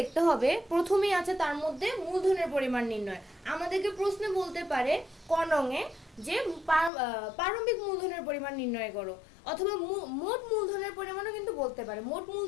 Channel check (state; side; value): drops out; right; at 6.9 s